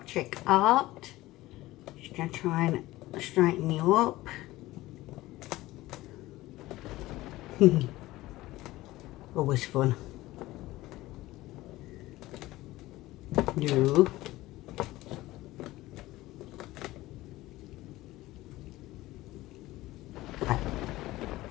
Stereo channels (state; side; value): quieter; right; 17.7 dB